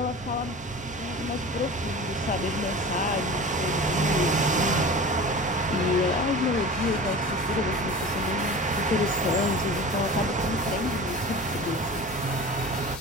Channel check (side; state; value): both; normal; correlation 0.36